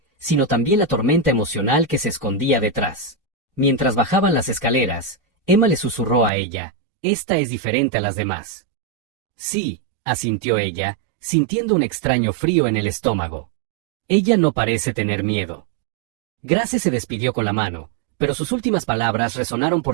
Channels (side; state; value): left; drops out; at 6.3 s